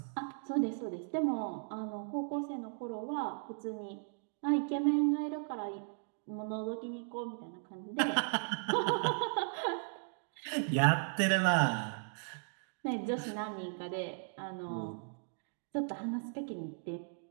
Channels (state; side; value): silent; left; digital silence